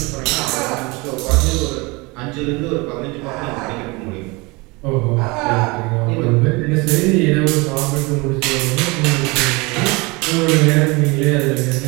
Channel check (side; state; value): left; quieter; 25.8 dB